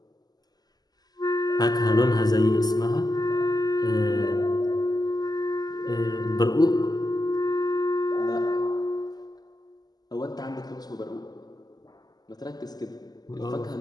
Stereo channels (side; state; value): right; late; 0.19 ms